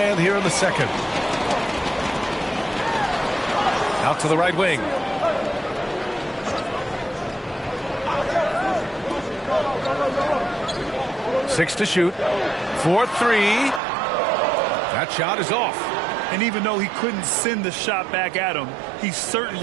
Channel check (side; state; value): left; drops out; at 13.8 s